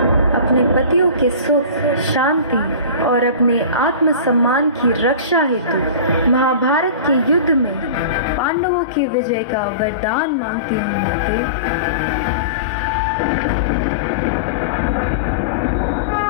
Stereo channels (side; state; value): both; inverted; correlation -0.34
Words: अपने पतियों के सुख, शांति और अपने आत्मसम्मान की रक्षा हेतु महाभारत के युद्ध में पांडवों की विजय का वरदान मांगती हूँ। माते,